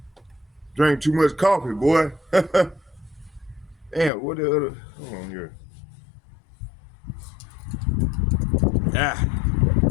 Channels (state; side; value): drops out; right; at 4.1 s